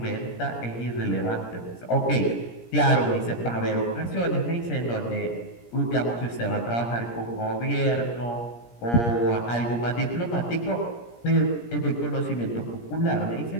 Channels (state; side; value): late; right; 17 ms